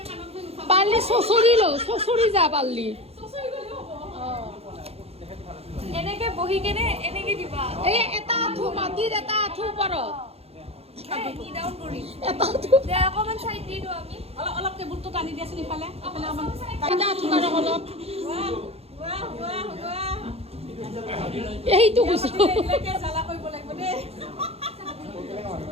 পাৰলি শ্বশুৰি যা পাৰলি এনেকে বহি কেনে এনেকে দিবা এই এটা আঁঠু মাটিৰ এটা আঁঠু ওপৰত নি ডাউন কৰি এটা আঁঠু দে অকমান সাইড দি দিও আমি অলপ টেবুলটো টানি দিয়াচোন ইফালে অকমান এটা আঁঠু কাৰক অলপ বাহ এইটো গুছো এলাকে জ্বালা কৰিব লাগিব দেই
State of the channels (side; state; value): left; late; 0.29 ms